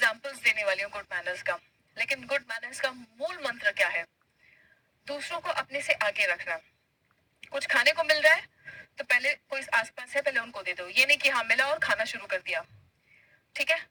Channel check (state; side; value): identical; both; correlation 1.00